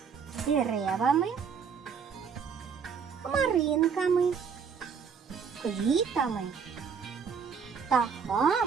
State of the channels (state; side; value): quieter; left; 6.3 dB